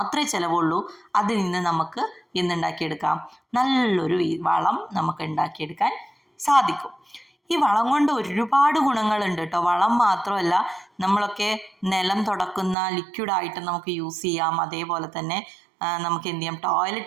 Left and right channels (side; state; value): left; drops out; at 12.8 s